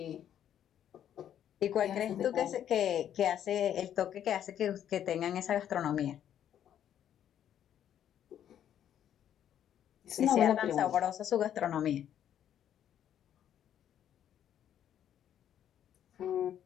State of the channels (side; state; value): right; quieter; 10.1 dB